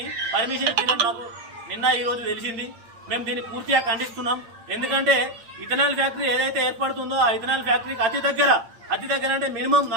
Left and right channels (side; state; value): left; late; 8.8 ms